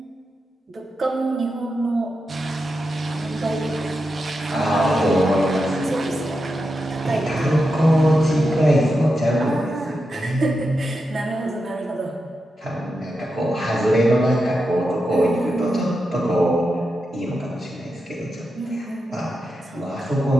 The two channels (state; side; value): normal; both; correlation 0.88